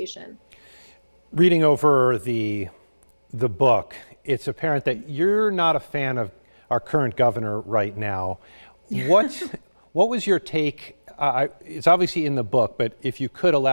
Reading over the book, it's apparent that you're not a fan of our current governor right now. What was your take? It's obviously in the book, but if you could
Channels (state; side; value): inverted; both; correlation -1.00